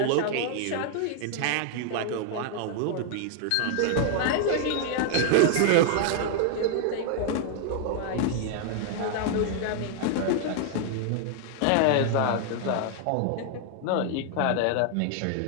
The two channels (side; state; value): both; different; correlation 0.00